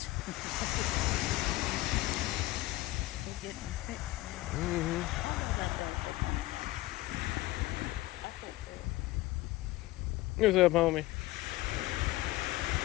They get them fixed. Mm-hmm. I fix it. What's up, homie?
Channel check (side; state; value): right; quieter; 18.3 dB